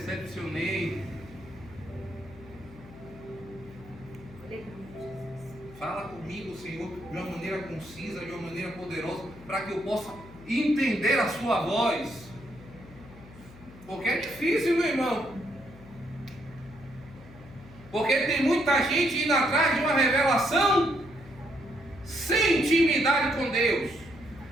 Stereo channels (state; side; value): noise; left; hum, 19 dB below the sound